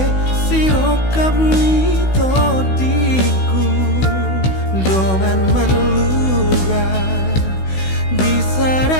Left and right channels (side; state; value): right; late; 16 ms